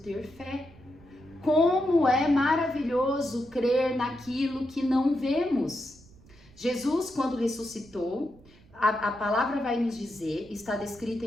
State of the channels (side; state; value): right; noise; rumble, 25 dB below the sound